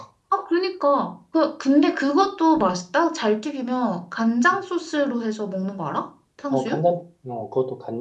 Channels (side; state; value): both; identical; correlation 1.00